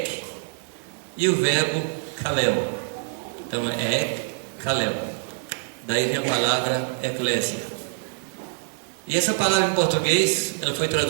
e o verbo kaleo. Então é ek, kaleo. Daí vem a palavra eclésia. E essa palavra em português, ela foi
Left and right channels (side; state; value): left; silent; 62 dB below the other